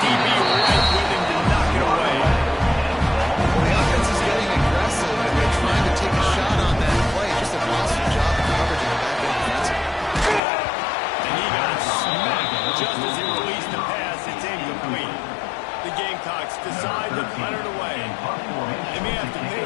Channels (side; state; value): right; drops out; at 10.4 s